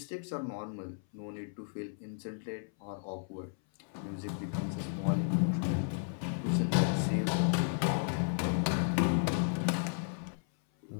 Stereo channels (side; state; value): right; silent; 55 dB below the other